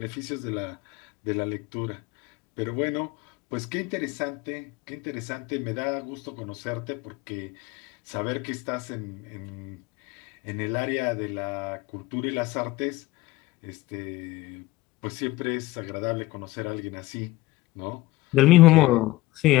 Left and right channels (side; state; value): right; quieter; 18.8 dB